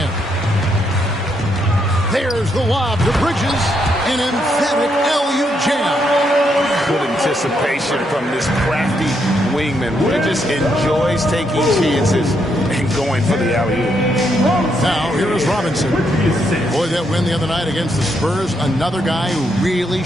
There's the lob to Bridges. An emphatic LU jam. Good anticipation from this crafty wingman. Bridges enjoys taking chances and going for the alley-oop. Now, here is Robinson. Boy, that win the other night against the Spurs, another guy who really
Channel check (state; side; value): normal; both; correlation 0.77